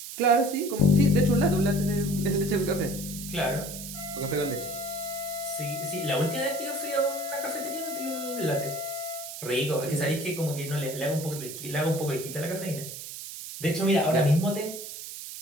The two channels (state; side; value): noise; right; hiss, 10 dB below the sound